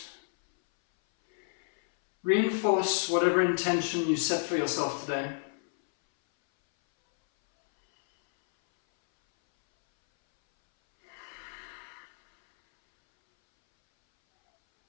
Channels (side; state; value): right; silent; 58 dB below the other